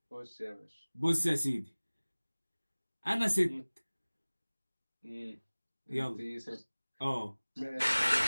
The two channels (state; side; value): inverted; both; correlation -1.00